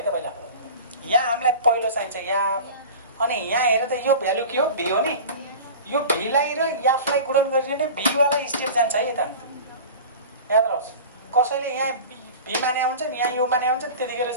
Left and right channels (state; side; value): inverted; both; correlation -0.35